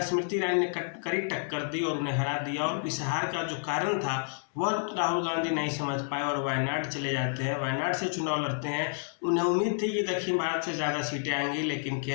स्मृति ईरानी ने कड़ी टक्कर दी और उन्हें हरा दिया। और इस हार का जो कारण था वह राहुल गांधी नहीं समझ पाए और वायनाड चले जाते हैं, वायनाड से चुनाव लड़ते हैं। उन्हें उम्मीद थी कि दक्षिण भारत से ज़्यादा सीटें आएंगी, लेकिन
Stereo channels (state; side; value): silent; right; 58 dB below the other